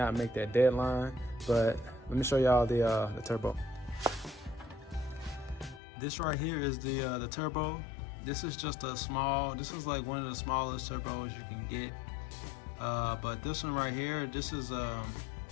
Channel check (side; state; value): right; drops out; at 5.8 s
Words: make that deadline. But let me show y'all the turbo. This right here is the turbo. This is just a small, this is like one of the smallest turbos you can get. But this one right here, this is a